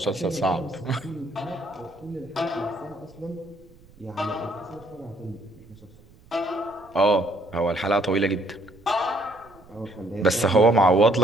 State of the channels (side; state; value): right; noise; rumble, 26 dB below the sound